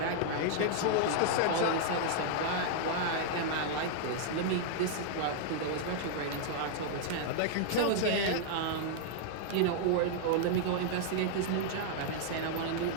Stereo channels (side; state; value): both; different; correlation -0.01